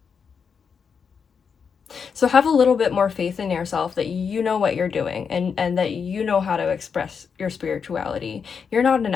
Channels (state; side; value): quieter; right; 6.3 dB